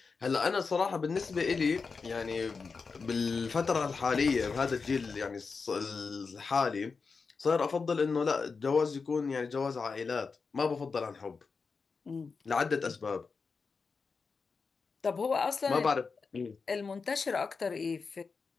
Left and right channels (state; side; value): quieter; right; 4.8 dB